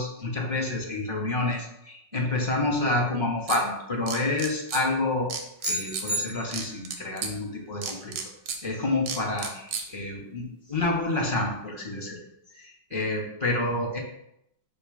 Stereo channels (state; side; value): late; left; 5.4 ms